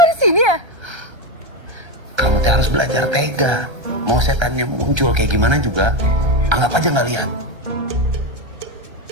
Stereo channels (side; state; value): left; late; 1.3 ms